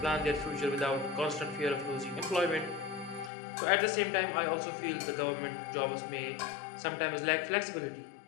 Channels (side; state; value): right; drops out; at 3.3 s